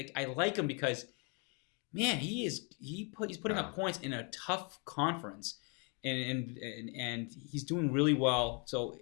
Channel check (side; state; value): right; quieter; 35.0 dB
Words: I like him because, man, he's putting up points in a tough conference, and he's doing really well. So